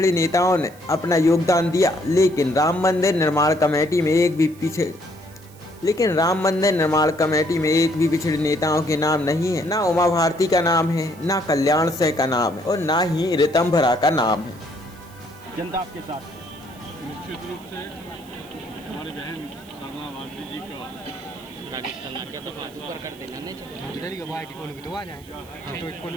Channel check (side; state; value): right; noise; hiss, 25 dB below the sound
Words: नेताओं ने अपना योगदान दिया। लेकिन राम मंदिर निर्माण कमेटी में एक भी पिछड़े नेताओं के नाम नहीं है। ना उमा भारती का नाम है, ना कल्याण सिंह का नाम है और ना ही ऋतंभरा का नाम है। जनता आपके साथ निश्चित रूप से हमारी बहन साधना भारती जी का